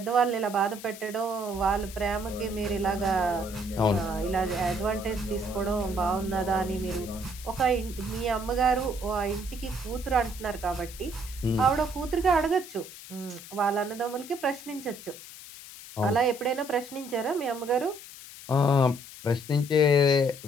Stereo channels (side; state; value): left; noise; hiss, 15 dB below the sound